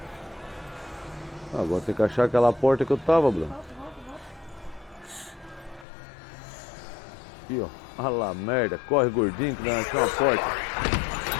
Agora tem que achar aquela porta que eu tava, Bruno. Aqui, ó. Ah lá, merda. Corre, gordinho, que nós achamos uma porta.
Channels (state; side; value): drops out; right; at 5.9 s